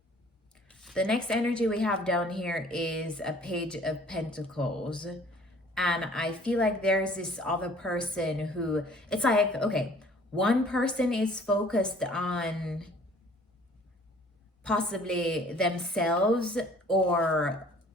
The next energy we have down here is a Page of Pentacles. And I feel like there's this other person who, it's like, okay, one person is focused on possibly themselves or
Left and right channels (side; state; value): both; normal; correlation 0.54